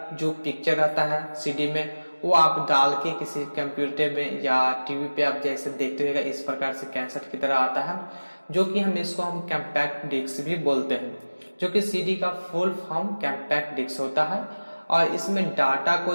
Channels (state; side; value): inverted; both; correlation -1.00